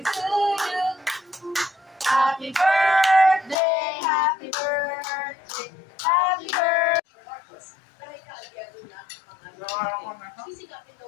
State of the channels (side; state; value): right; drops out; at 3.6 s